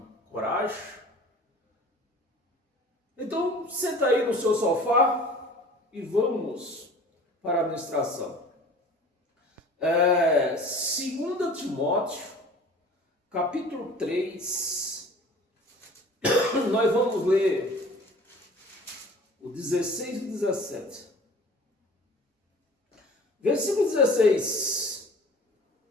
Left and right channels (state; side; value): normal; both; correlation 0.44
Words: coragem? Então, senta aí no seu sofá e vamos para a ministração. 2 Timóteo, capítulo 3, nós vamos ler o 16 e o 17. Versículo 16.